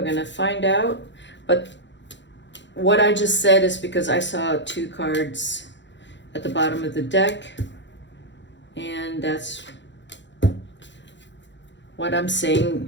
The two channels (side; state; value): right; late; 0.53 ms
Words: going to find out. But what I just said is because I saw two cards at the bottom of the deck. And that's what I'm